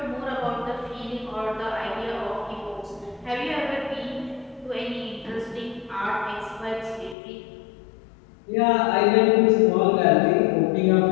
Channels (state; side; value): drops out; right; at 7.2 s